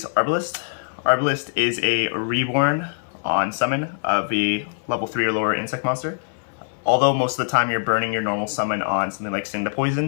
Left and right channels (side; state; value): right; silent; 59 dB below the other